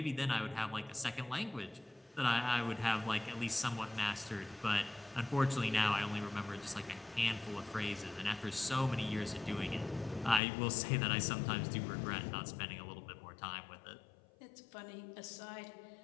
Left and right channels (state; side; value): drops out; right; at 10.4 s